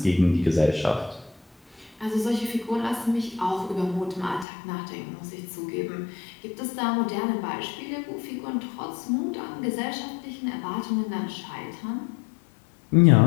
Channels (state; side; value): drops out; right; at 4.5 s